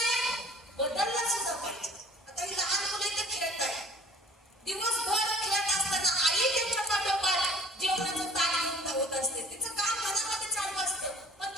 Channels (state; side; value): normal; both; correlation 0.50